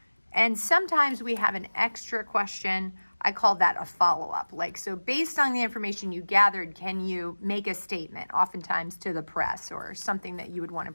And sometimes we have an extra question. I call that a follow-up. Like, so based on the information you gathered, can you make a statement, oftentimes to the press or something that you would want to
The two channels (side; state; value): both; inverted; correlation -1.00